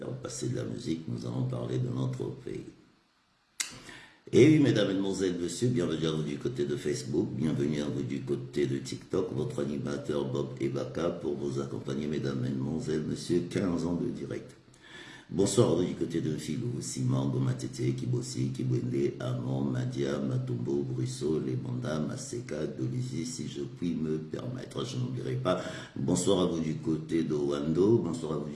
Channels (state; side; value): identical; both; correlation 1.00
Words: passer de la musique, nous allons parler de notre pays. Et oui, mesdames, mesdemoiselles, messieurs, bienvenue à vous du côté de Facebook, bienvenue à vous du côté de TikTok, votre animateur Bob Ebaka pour vous accompagner, mesdames, mesdemoiselles, messieurs, 15 ans de direct. Bonsoir à vous du côté de Filou, Simon, Matete, Kibosi, Kibwende, Amon, Madia, Matumbo, Brusso, Lebanda, Maseka, Dolizy, si je puis me permettre, je n'oublierai pas. Bonsoir à vous du côté de Wando, bonsoir à vous